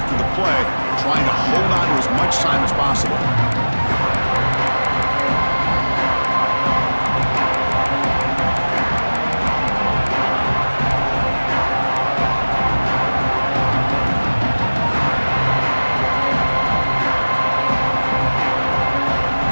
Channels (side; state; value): both; inverted; correlation -1.00